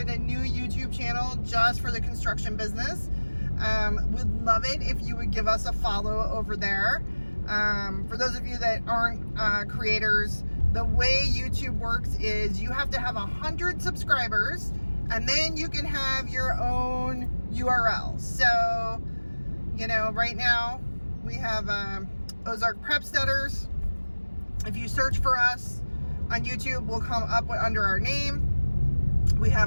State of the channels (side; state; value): both; inverted; correlation -1.00